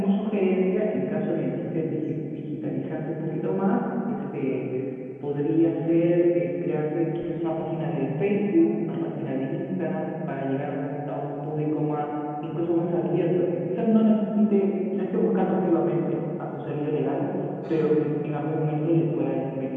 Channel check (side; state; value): both; identical; correlation 1.00